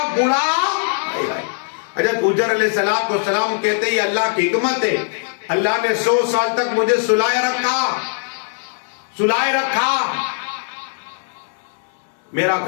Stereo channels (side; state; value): right; silent; 66 dB below the other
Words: بوڑھا۔ حضرت عزر علیہ السلام کہتے ہیں یہ اللہ کی حکمت ہے، اللہ نے 100 سال تک مجھے سلائے رکھا۔ میرا